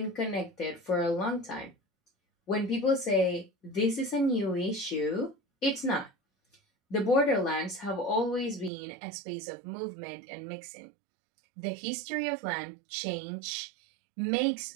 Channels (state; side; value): drops out; left; at 8.7 s